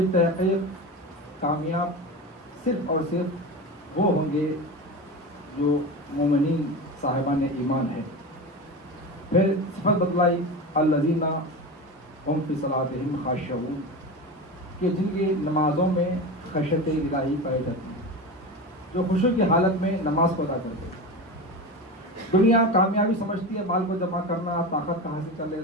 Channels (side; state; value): both; normal; correlation 0.25